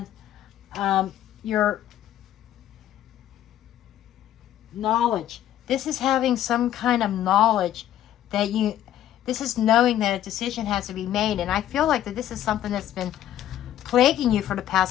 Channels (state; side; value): quieter; right; 12.0 dB